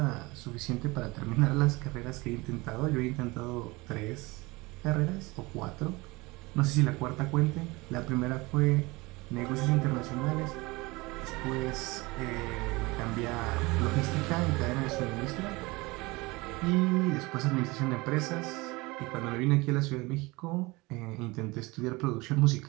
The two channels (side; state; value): left; quieter; 23.2 dB